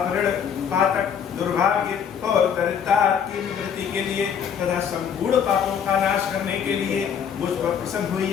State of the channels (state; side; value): quieter; right; 7.7 dB